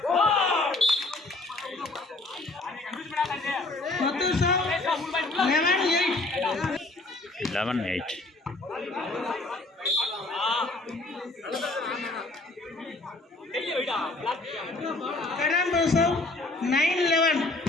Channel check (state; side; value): quieter; right; 3.0 dB